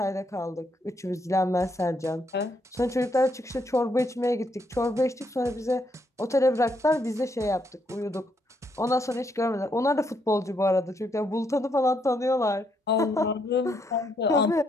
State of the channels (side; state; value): both; normal; correlation 0.75